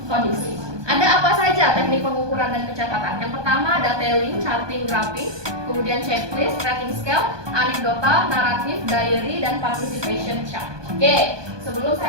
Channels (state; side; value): late; left; 1.2 ms